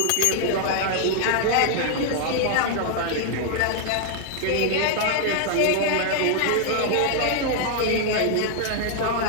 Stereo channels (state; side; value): different; both; correlation 0.00